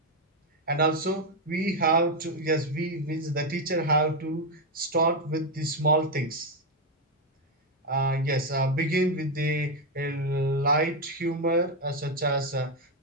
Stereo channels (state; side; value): normal; both; correlation 0.06